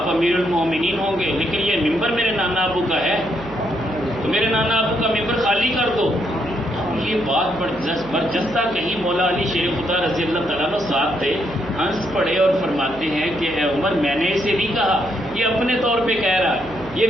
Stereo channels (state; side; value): noise; right; hum, 18 dB below the sound